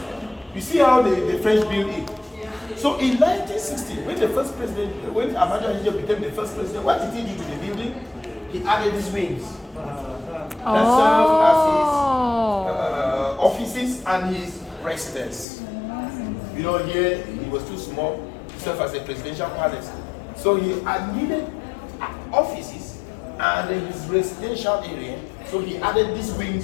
You see how the French built it. So in 1960, when the first president, when Amadou Ahidjo became the first president, what did he do to the building? He added these wings that serve as his offices and his residence. You know, here it was too small to serve as a presidential palace. So he needed offices and his residential area. So he added these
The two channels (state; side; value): drops out; right; at 15.5 s